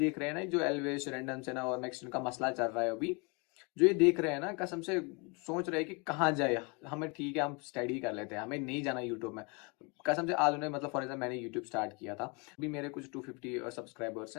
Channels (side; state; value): right; quieter; 31.1 dB